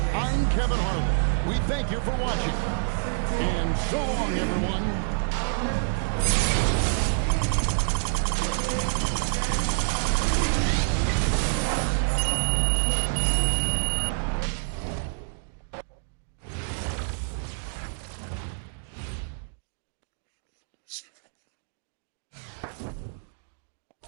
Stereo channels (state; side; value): silent; left; digital silence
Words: I'm Kevin Harlan. We thank you for watching. And so long, everyone.